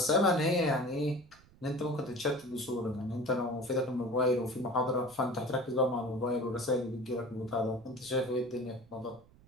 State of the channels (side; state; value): right; noise; rumble, 26 dB below the sound